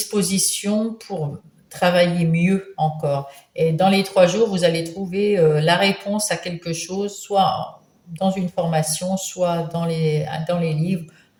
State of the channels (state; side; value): identical; both; correlation 1.00